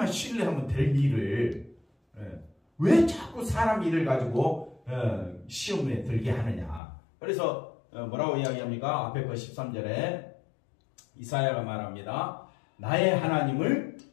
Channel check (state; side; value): drops out; right; at 6.8 s